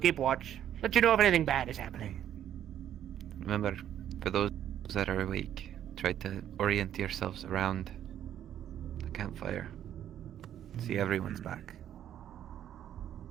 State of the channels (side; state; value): left; quieter; 10.6 dB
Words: watch. Let you know if anything bad is happening. Remember, for those that are awake, try to orient yourselves around the campfire. See everyone's back.